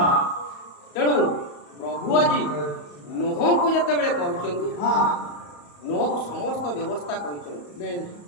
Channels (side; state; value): right; late; 34 ms